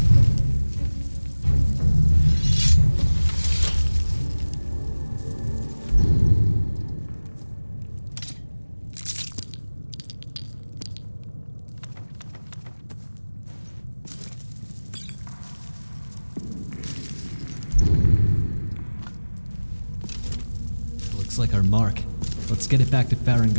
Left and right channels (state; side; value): inverted; both; correlation -1.00